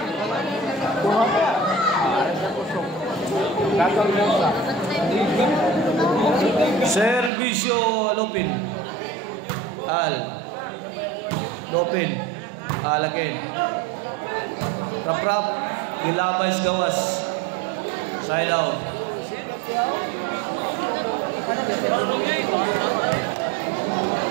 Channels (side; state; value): left; drops out; at 7.3 s